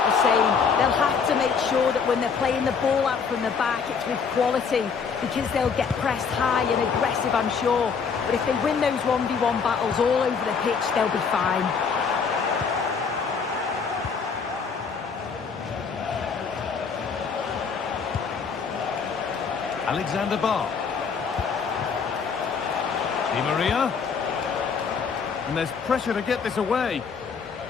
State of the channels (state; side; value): quieter; right; 5.8 dB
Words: the same. They'll have to make sure that when they're playing the ball out from the back, it's with quality, because they'll get pressed high and aggressive, I'm sure. But if they win those 1v1 battles all over the pitch, they'll be fine. Alexander Barr. Di Maria. And there's pressure to get this away.